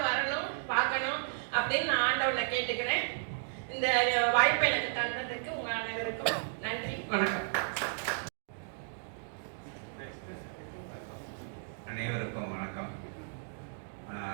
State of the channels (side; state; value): left; silent; digital silence